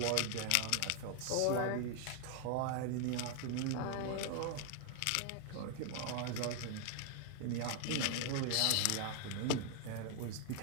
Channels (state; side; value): different; both; correlation 0.00